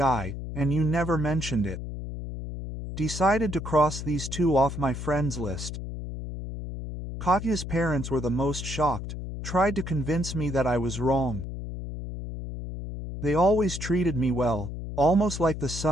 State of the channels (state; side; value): noise; left; hum, 7 dB below the sound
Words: and you never mentioned it. Decided to cross these two off my friends list. Katya's parents were the most shocked, tried to convince me that I was wrong. They always treated me well, almost like the